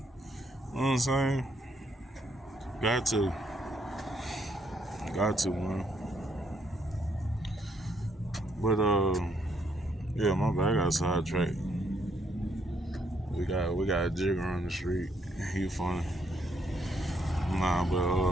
what I'm saying? Got to, man. But yeah, my bad. I got sidetracked. We got a jigger on the street. He funny. Nah,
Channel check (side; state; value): both; normal; correlation 0.72